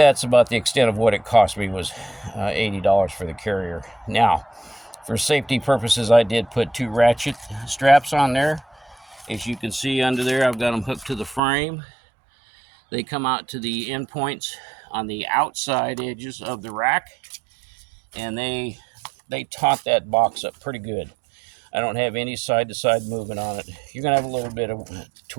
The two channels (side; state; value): left; drops out; at 11.4 s